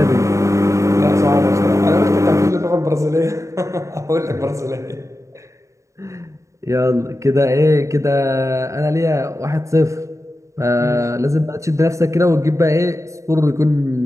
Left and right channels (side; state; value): left; late; 0.15 ms